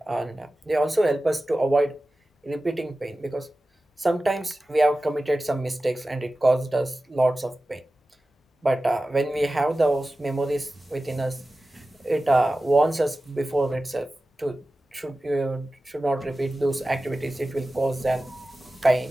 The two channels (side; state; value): both; normal; correlation 0.95